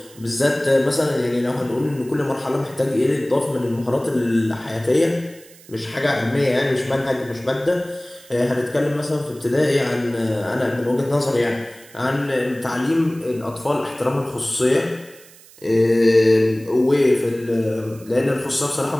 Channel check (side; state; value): right; noise; hiss, 23 dB below the sound